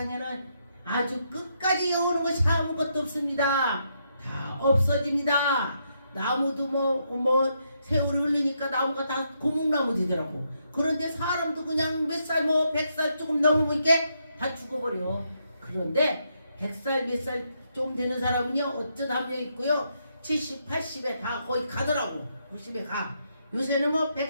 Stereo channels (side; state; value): both; inverted; correlation -0.78